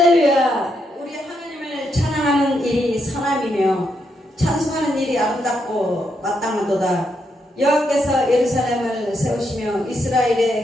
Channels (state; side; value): normal; both; correlation 0.79